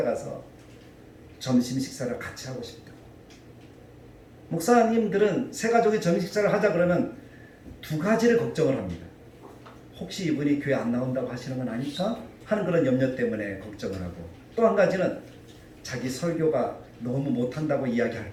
점심 식사를 같이 하고 싶다. 목사님들은 세 가족이 점심 식사를 하자 그러면 두 가지를 걱정을 합니다. 혹시 이분이 교회 안 나온다고 하시는 건 아닐까 하는 그런 염려 때문에 걱정을 하고, 또 한 가지는 자기 설교가 너무 못한다고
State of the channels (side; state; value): both; identical; correlation 1.00